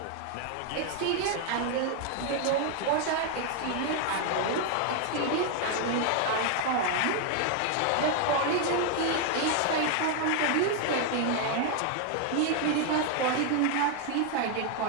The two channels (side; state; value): both; different; correlation 0.00